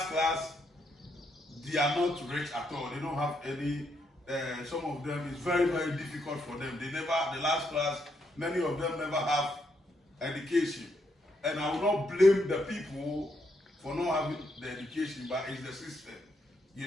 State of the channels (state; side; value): normal; both; correlation 0.77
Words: class, they are not rich at all. They don't have any. Some of them is very, very difficult for them. They never. The last class, many of them never have education, and I will not blame the people for not having the education, but it's the system, you